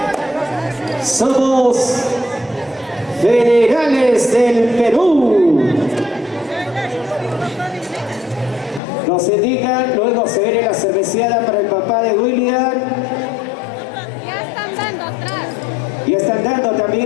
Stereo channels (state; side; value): drops out; right; at 8.8 s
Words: Somos Federales del Perú. Nos indican, luego se viene la cerveceada para el papá de William. Ya están dando atrás. Y están dando también,